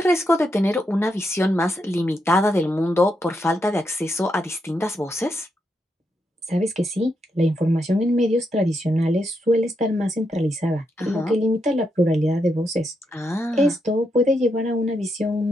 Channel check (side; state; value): both; normal; correlation 0.82